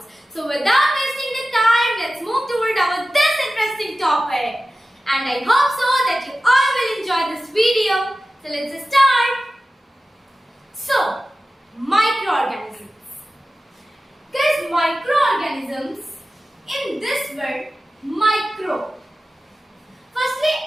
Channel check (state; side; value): normal; both; correlation 0.95